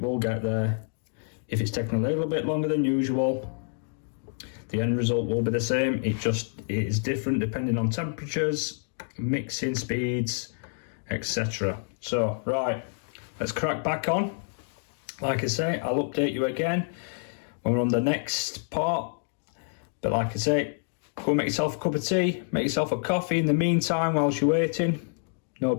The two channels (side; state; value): right; silent; digital silence